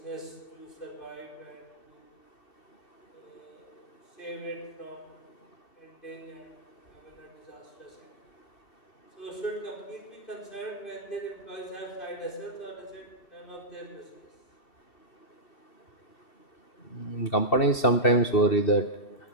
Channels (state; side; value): late; right; 2.7 ms